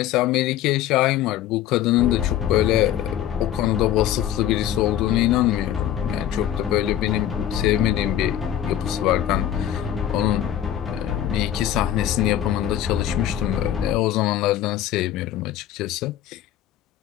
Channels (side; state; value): right; quieter; 11.4 dB